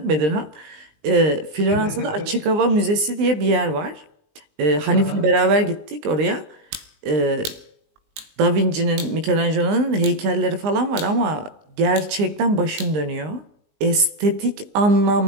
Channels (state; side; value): late; left; 19 ms